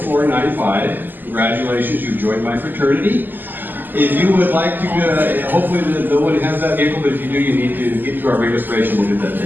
Congratulations, you've joined my fraternity. If you would like to, hopefully no one has that vehicle, but if you do, you need to get to our registration. We'll get that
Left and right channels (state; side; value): late; left; 0.090 ms